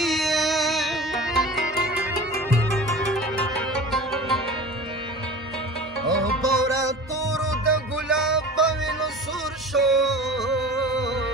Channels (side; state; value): both; normal; correlation 0.37